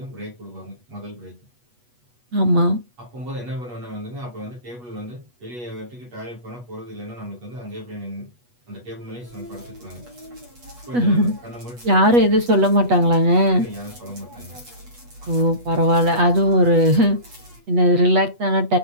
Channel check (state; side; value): late; left; 8.3 ms